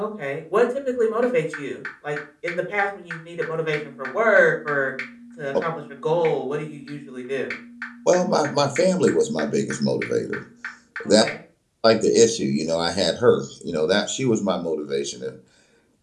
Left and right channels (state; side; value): identical; both; correlation 1.00